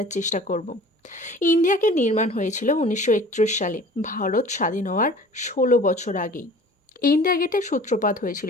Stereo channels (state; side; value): normal; both; correlation 0.45